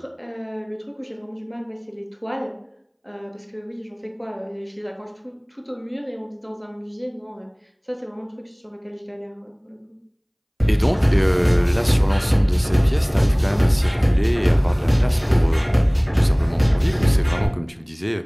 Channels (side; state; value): both; identical; correlation 1.00